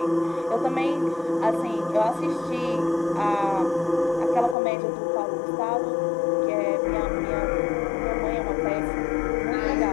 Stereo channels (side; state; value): right; drops out; at 4.5 s